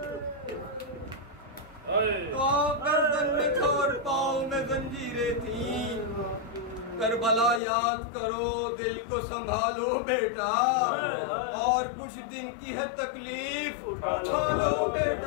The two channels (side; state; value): right; drops out; at 7.6 s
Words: تو گردن میں تھا اور پاؤں میں زنجیریں تھیں۔ کربلا یاد کرو، دل کو سنبھالو بیٹا، اور کچھ دن کی ہے تکلیف اٹھا لو